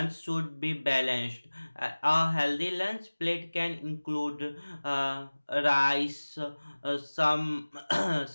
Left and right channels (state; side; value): inverted; both; correlation -1.00